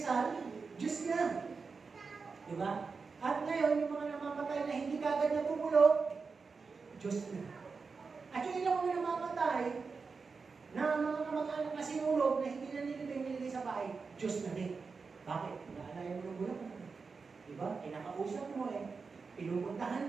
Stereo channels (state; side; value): quieter; left; 4.8 dB